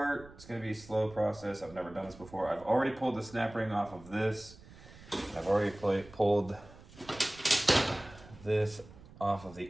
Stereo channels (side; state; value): right; noise; rumble, 20 dB below the sound